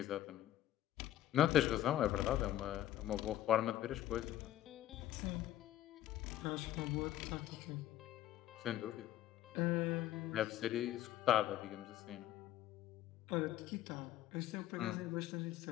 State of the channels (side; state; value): right; quieter; 13.1 dB